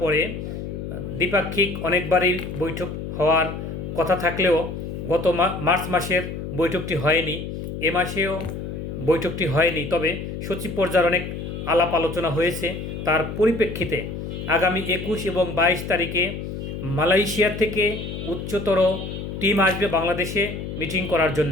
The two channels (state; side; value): noise; left; hum, 7 dB below the sound